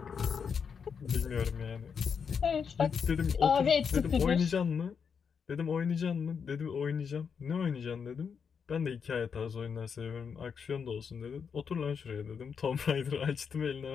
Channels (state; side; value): quieter; right; 6.4 dB